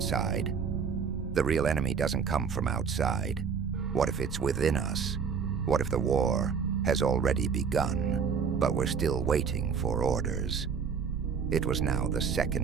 The real enemy doesn't come from outside. What if it's within us? What if the war has already begun, but we're still waiting for orders?" It was now the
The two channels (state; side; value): quieter; left; 6.3 dB